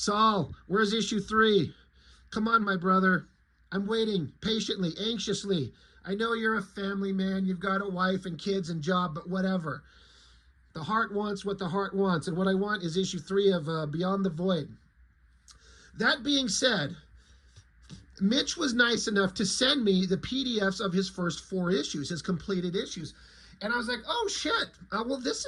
where's issue 3? Come on, my brother. I'm waiting patiently, anxiously. I know you're a family man. You've got a wife and kids and job, but whatever. The heart wants what the heart wants, and what I want is issue 3 of Beyond the Void. That being said, Mitch was nice enough to send me the PDFs of his first 4 issues, his completed issues. And I was like, oh, shit. Well, this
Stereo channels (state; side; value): identical; both; correlation 1.00